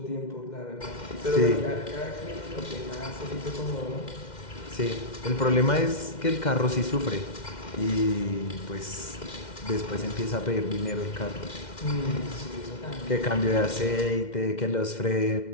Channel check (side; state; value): right; late; 2.1 ms